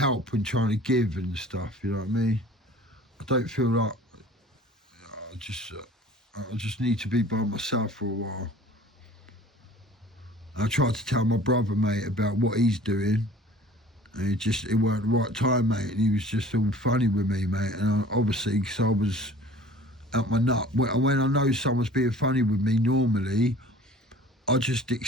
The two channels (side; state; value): both; normal; correlation 0.46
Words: and trying to give and stuff. You know what I mean? I don't feel like I just need to be by myself for a while. I tried to tell my brother, mate, about what he's doing, and it weren't the right time, mate, and he was just all funny with me, mate, and obviously, because I was at my nut, when I know someone's being funny with me normally, I just